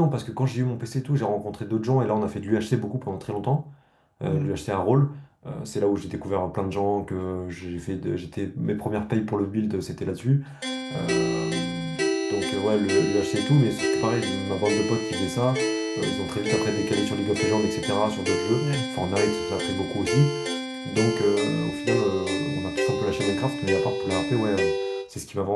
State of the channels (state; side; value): identical; both; correlation 1.00